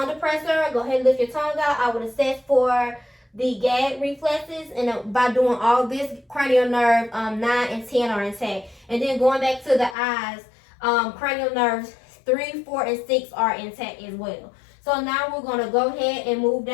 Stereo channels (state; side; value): drops out; right; at 10.0 s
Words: depressor, go ahead and lift your tongue out. I would assess for the gag reflexes. And by doing all this, cranial nerve 9 and 10 are intact. And then going back to the eyes, cranial nerves 3, 4, and 6 are intact as well. So now we're going to go ahead and move